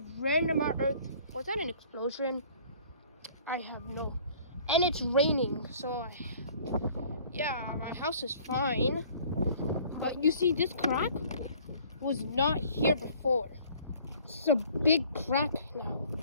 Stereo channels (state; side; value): inverted; both; correlation -0.53